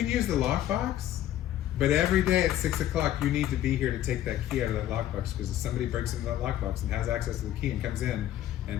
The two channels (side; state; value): right; quieter; 12.5 dB